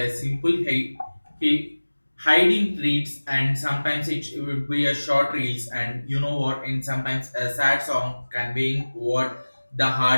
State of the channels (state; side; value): inverted; both; correlation -1.00